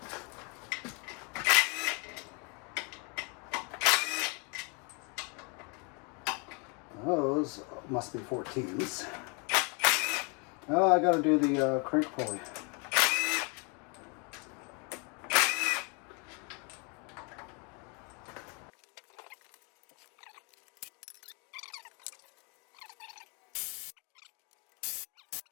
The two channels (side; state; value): right; quieter; 33.7 dB